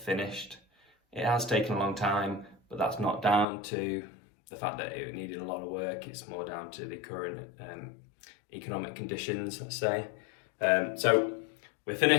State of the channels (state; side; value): drops out; right; at 3.5 s